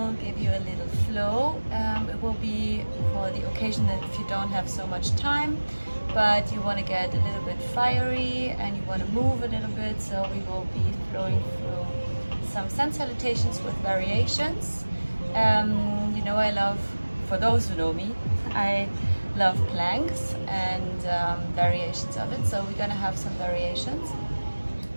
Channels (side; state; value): both; inverted; correlation -1.00